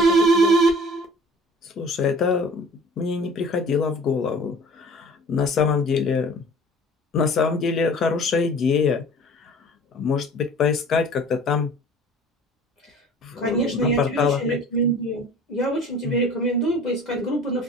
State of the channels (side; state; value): both; normal; correlation 0.46